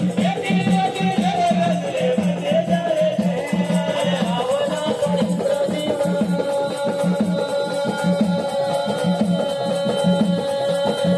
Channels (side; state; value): both; identical; correlation 1.00